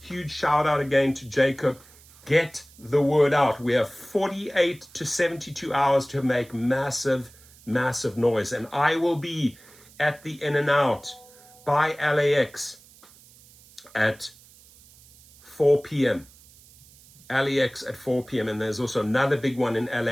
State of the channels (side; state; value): right; noise; hiss, 25 dB below the sound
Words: shout out again to Jacob. Get the word out. We have 48 to 72 hours to make massive noise. And I will be at the In-N-Out by LAX at 4 p.m. LAX at 4 p.m. And there's also another big one in